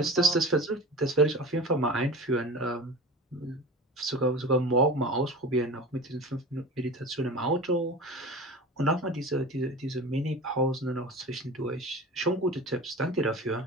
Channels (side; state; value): both; normal; correlation 0.34